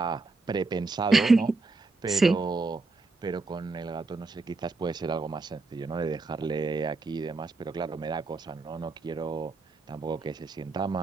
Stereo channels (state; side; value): quieter; left; 3.6 dB